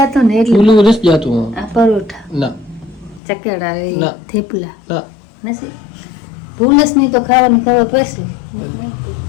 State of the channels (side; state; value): right; drops out; at 3.2 s